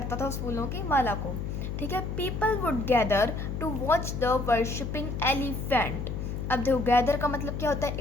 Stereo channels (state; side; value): noise; left; hum, 4 dB below the sound